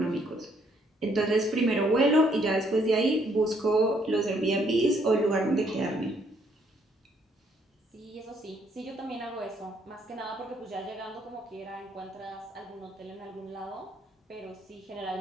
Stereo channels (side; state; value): both; normal; correlation 0.69